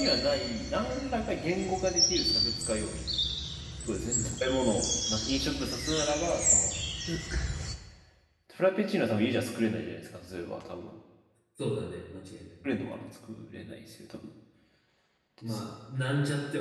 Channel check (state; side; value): identical; both; correlation 1.00